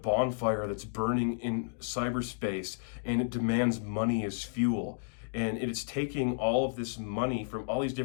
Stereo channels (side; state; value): right; silent; digital silence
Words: that's burning in cyberspace, and it demands money as fuel. And it is taking all of this money from all these